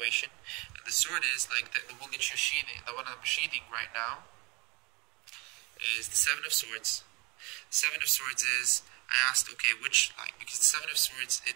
And the sword is like the one that you're sheathing, the one I'm sheathing right now, is the Seven of Swords. Seven of Swords is, I asked, okay, which, like, because the Seven of Swords,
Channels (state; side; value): quieter; left; 27.7 dB